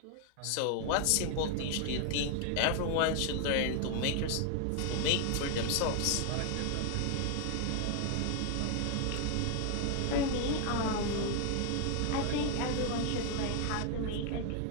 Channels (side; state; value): both; different; correlation 0.00